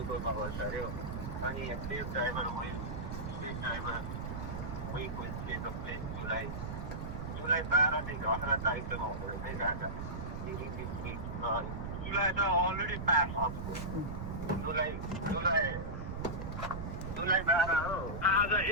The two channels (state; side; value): noise; right; rumble, 5 dB below the sound